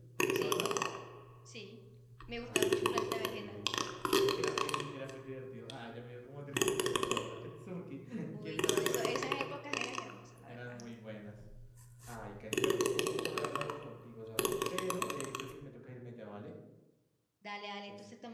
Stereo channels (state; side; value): identical; both; correlation 1.00